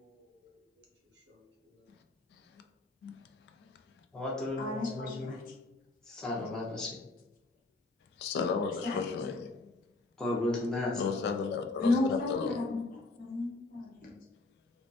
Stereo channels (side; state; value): right; quieter; 3.0 dB